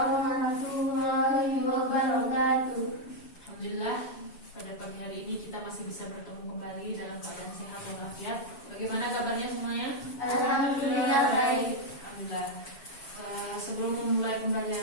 wabarakatuh. Alhamdulillah, pada pagi hari ini kita masih bisa bertemu kembali dalam keadaan sehat walafiat. Bagaimana kabarnya semuanya? Alhamdulillah baik. Alhamdulillah. Sebelum memulai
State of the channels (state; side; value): late; right; 7.2 ms